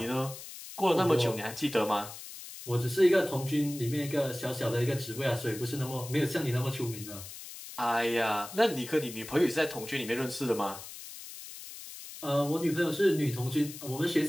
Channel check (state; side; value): noise; left; hiss, 13 dB below the sound